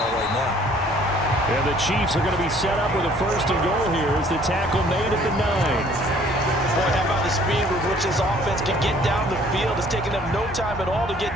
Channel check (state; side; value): normal; both; correlation 0.57